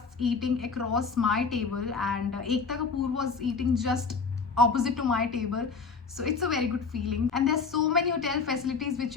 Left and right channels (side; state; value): right; quieter; 5.0 dB